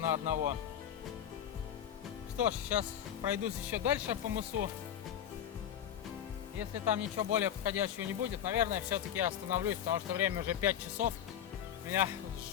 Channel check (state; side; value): quieter; right; 9.9 dB